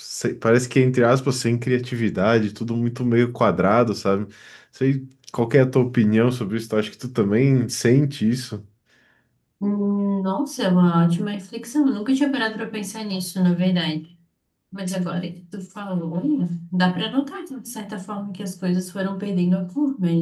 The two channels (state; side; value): identical; both; correlation 1.00